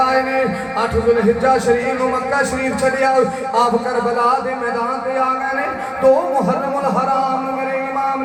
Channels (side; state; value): both; identical; correlation 1.00